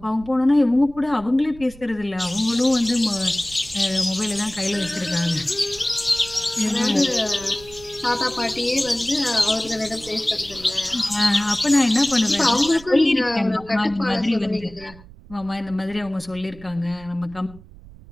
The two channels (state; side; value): noise; right; rumble, 20 dB below the sound